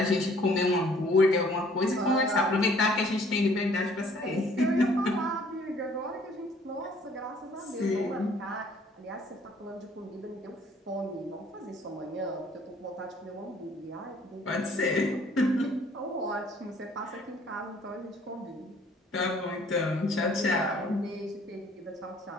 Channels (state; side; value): normal; both; correlation 0.58